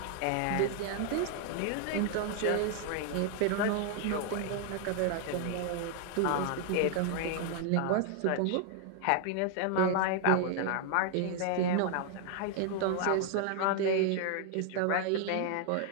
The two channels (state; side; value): different; both; correlation 0.00